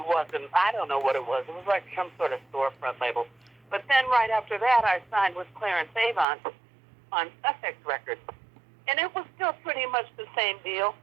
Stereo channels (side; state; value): left; drops out; at 6.2 s